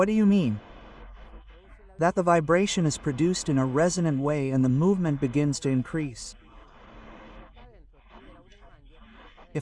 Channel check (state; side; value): identical; both; correlation 1.00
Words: do you mean? That the vibration is produced in a resonant way and the movement begins to increase.